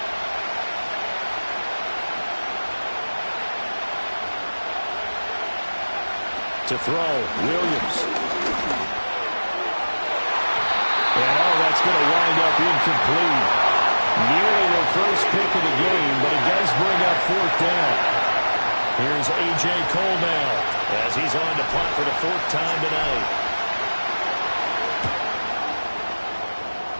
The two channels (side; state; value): both; inverted; correlation -1.00